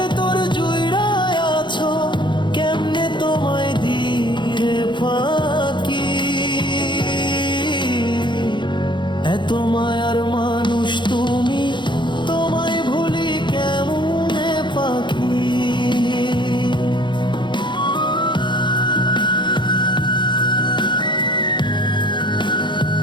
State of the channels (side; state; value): right; late; 0.23 ms